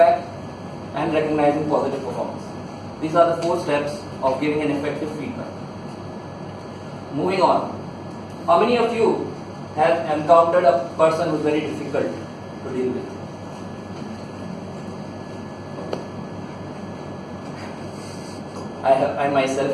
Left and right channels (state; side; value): identical; both; correlation 1.00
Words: and recognizing positive performance. These are the 4 steps of giving an effective feedback. Moving on. How many of you have encountered a person who is very difficult to deal with? I myself